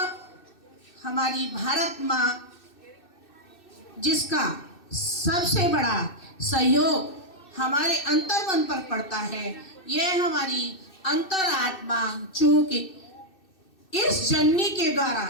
हमारी भारत माँ, जिसका सबसे बड़ा सहयोग हमारे अंतर्मन पर पड़ता है, यह हमारी अंतरात्मा, चूंकि इस जननी के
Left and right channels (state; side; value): late; right; 2.6 ms